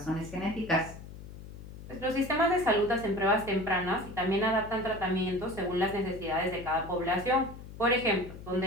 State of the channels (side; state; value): left; noise; hum, 14 dB below the sound